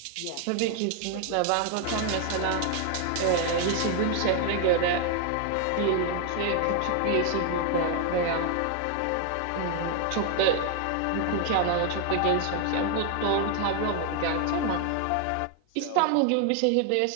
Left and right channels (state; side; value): different; both; correlation 0.01